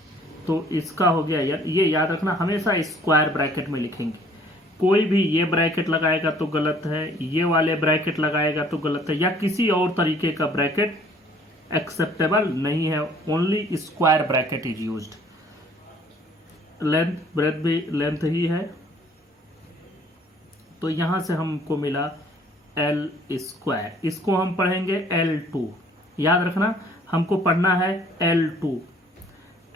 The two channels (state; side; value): normal; both; correlation 0.57